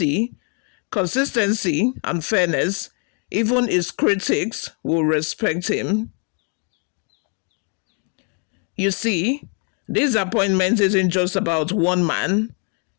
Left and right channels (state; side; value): quieter; right; 39.7 dB